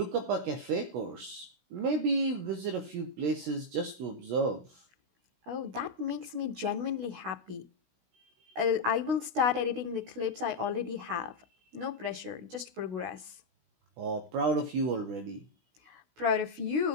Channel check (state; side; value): late; left; 16 ms